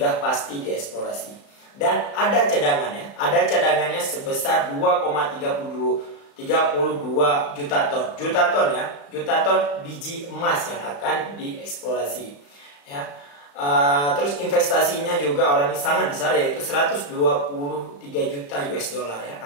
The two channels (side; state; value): right; late; 35 ms